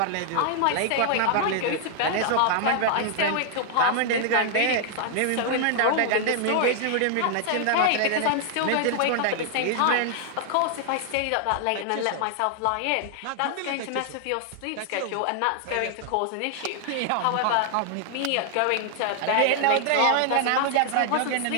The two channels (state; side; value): different; both; correlation 0.00